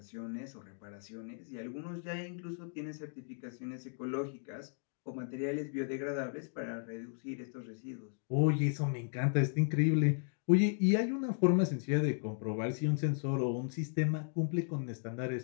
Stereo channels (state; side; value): silent; right; digital silence